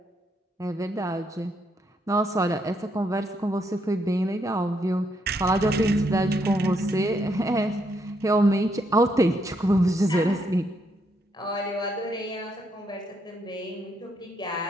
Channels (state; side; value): normal; both; correlation 0.76